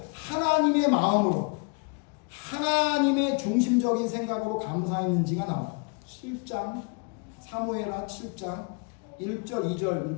하나님의 마음으로 하나님의 중심적인 생각으로 감사했는지가 나와요. 7장 사무엘하 7장 1절 2절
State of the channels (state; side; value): quieter; right; 34.9 dB